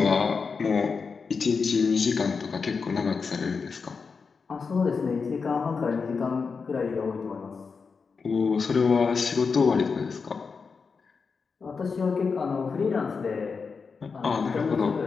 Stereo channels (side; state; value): right; quieter; 5.2 dB